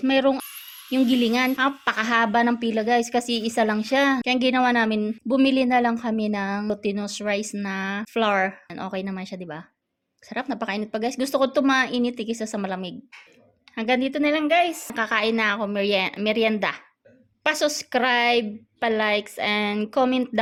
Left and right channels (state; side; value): identical; both; correlation 1.00